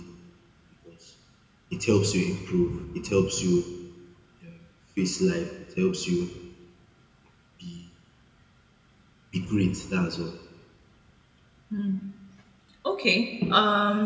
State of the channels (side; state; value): both; identical; correlation 1.00